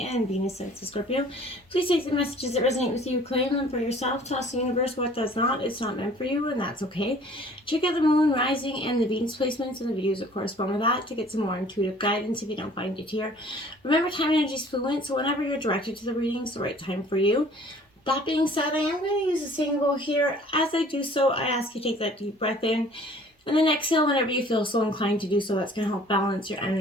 and Venus signs of Scorpio. Please take the messages that resonate with you, claim them for yourself, toss the universe what does not. It's not meant for you, and that's okay. Check out the Moon, Rising, and the Venus placements and the videos that correspond with that to get some more intuitive guidance if you don't find it here. Remember, time and energy is fluent, so whenever you're directed to the reading, it's the right time for you. That being said, I am going to use a singing bowl here. As I do so, I ask you to take that deep breath in and then exhale whenever you feel so inclined to do so. That's going to help balance your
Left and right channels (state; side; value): normal; both; correlation 0.52